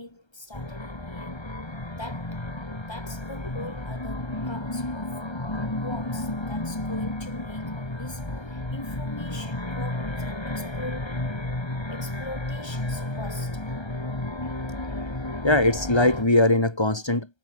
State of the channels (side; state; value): right; late; 1.3 ms